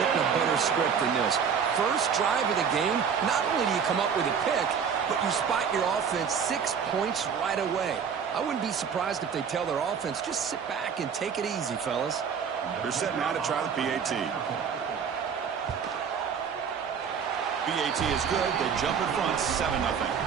a better script than this. First drive of the game, not only do you come up with a pick, but you spot your offense 6 points right away. I wouldn't be surprised if they tell their offense, just sit back and take it easy, fellas. They're setting out to try the PAT. PAT is good. They jump in front 7-0.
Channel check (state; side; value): quieter; left; 6.9 dB